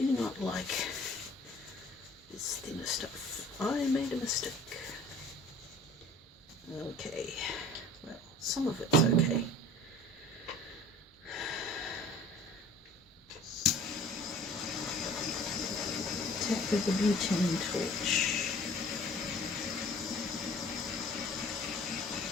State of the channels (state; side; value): normal; both; correlation 0.48